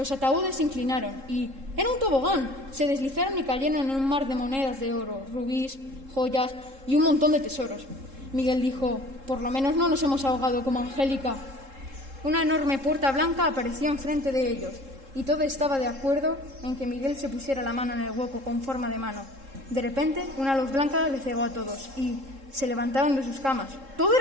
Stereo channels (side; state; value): left; late; 3.7 ms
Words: ataúdes se inclinaron y ¡era un tobogán! Se deslizaron y cayeron en un mar de monedas de oro, rubíes, joyas y un montón de tesoros. Miguel dijo: por lo menos no nos hemos ahogado como Angélica. Una enorme puerta blanca apareció enfrente de ellos y todo estaba de acuerdo en que Miguel se pusiera la mano en el hueco con forma de mano. De repente, una luz blanca les cegó a todos y se levantaron de sus camas. ¡Todo